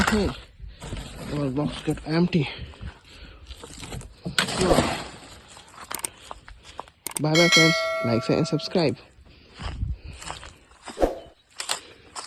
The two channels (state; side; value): identical; both; correlation 1.00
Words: hey. Our box got empty. Wow. Bye bye, friends. Like, share, and subscribe.